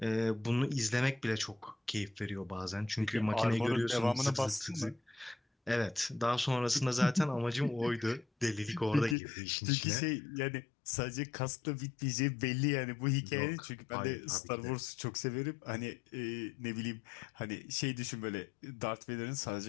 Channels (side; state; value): right; drops out; at 9.2 s